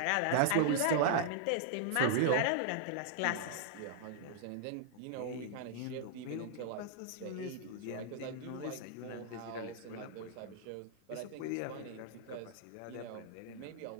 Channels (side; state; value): both; different; correlation -0.01